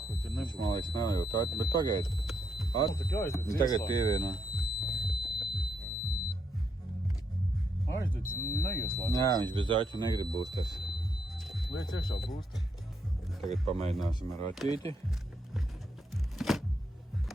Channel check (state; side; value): normal; both; correlation 0.78